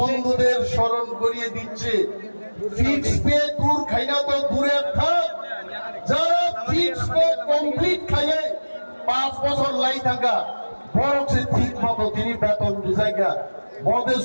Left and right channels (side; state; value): both; inverted; correlation -1.00